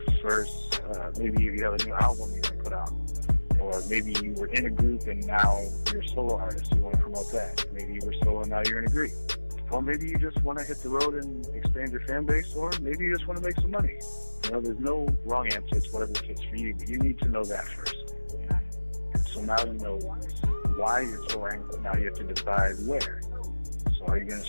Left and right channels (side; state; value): both; inverted; correlation -1.00